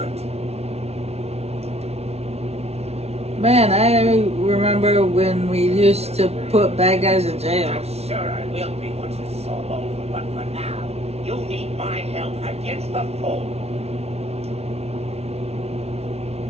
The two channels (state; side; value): late; left; 0.31 ms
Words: Man, I remember when we used to put bad guys in jail. I'm sure I will be once this is all over, but for now, you need my help against the foe.